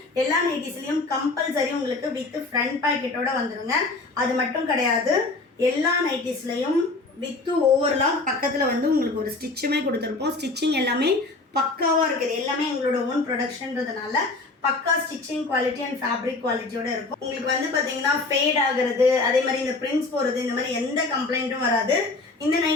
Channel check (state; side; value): quieter; right; 3.4 dB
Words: எல்லா நைட்டிஸ்லையும் கம்பல்சரி உங்களுக்கு வித் ஃப்ரண்ட் பாக்கெட்டோட வந்துடுங்க. அது மட்டும் கிடையாது, எல்லா நைட்டிஸ்லையும் வித்து ஓவர்லாம் பக்கத்தில் வந்து உங்களுக்கு ஒரு ஸ்டிச்சுமே கொடுத்துருப்போம். ஸ்டிச்சிங் எல்லாமே பக்காவாக இருக்குது. எல்லாமே எங்களோட ஓன் ப்ரொடக்ஷன்றதுனால பக்கா ஸ்டிச்சிங் குவாலிட்டி அண்ட் ஃபேப்ரிக் குவாலிட்டியோட இருக்கும். உங்களுக்கு வந்து பார்த்தீங்கன்னா ஃபேட் ஆகுறது, அதே மாதிரி இந்த பிரிண்ட்ஸ் போகிறது, இந்த மாதிரி எந்த கம்ப்ளைண்ட்டும் வராது. இந்த